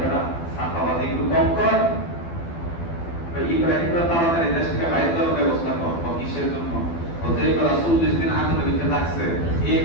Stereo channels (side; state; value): right; late; 12 ms